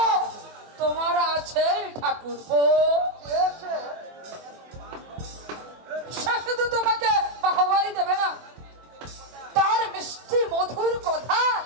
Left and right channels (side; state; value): left; late; 24 ms